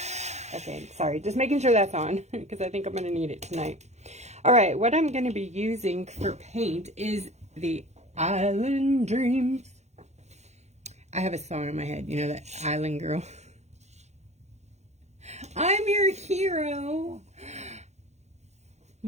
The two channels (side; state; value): left; late; 0.33 ms